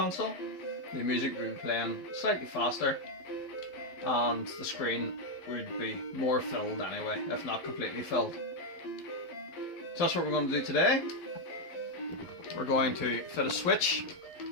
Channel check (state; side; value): late; right; 12 ms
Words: The music would be playing slightly faster, and the screen would be more filled anyway, if not completely filled. So that's what we're going to do today. We're going to fit a switch